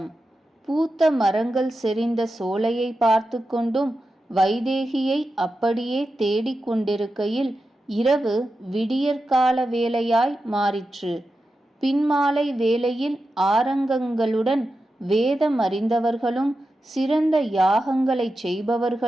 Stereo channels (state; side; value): normal; both; correlation 0.91